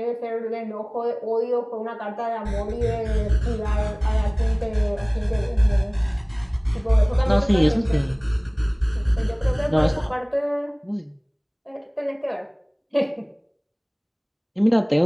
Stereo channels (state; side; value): identical; both; correlation 1.00